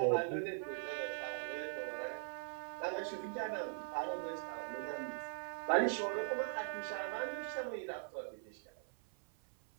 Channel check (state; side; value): silent; left; 50 dB below the other